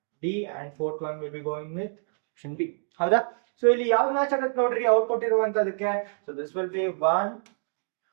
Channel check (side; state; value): left; silent; 60 dB below the other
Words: D, and fourth one will be going with option B. ಹೌದಾ? So ಇಲ್ಲಿ ಯಾವ ಮ್ಯಾಚ್ ಆಗುತ್ತೆ ನೋಡ್ರಿ ಔಟ್ಪುಟ್ ಇರುವಂತದಕ್ಕೆ. So this will be 1